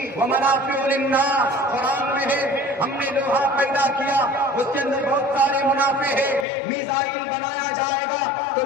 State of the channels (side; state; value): right; drops out; at 6.5 s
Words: وَمَنَافِعُ لِلنَّاسِ، قرآن میں ہے ہم نے لوہا پیدا کیا، اس کے اندر بہت سارے منافع ہے۔ میزائل بنایا جائے گا تو